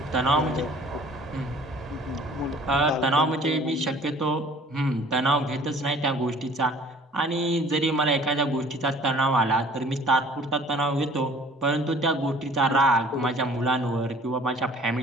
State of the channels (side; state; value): both; normal; correlation 0.51